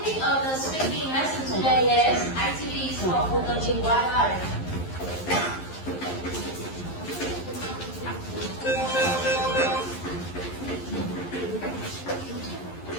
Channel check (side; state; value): right; late; 11 ms